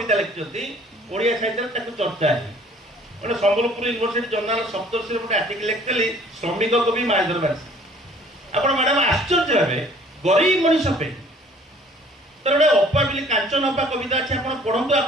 लिखिछंती ओडिया साहित्य ताकू चर्चा है गोटे संबलपुर यूनिवर्सिटी जर्नाल सप्तर्षि गोटे आर्टिकल लिखिली श्रमिक कवि मायधर मानसिंह आपण मैडम आश्चर्य हे गरीब मनीष पे तर गोटे अप्पा बिली कांचन अप्पा कविता अच्छे आप पढ़ु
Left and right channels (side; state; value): both; normal; correlation 0.54